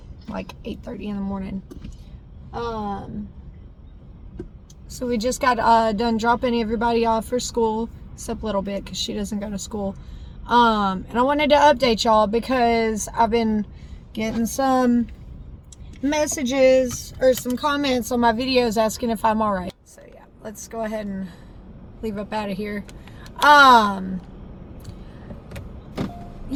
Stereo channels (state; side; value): identical; both; correlation 1.00